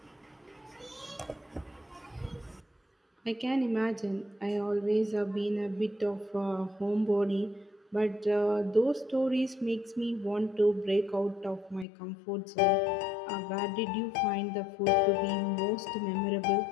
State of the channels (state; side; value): drops out; right; at 11.9 s